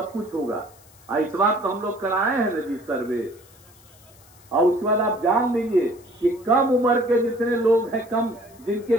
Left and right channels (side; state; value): left; noise; hiss, 26 dB below the sound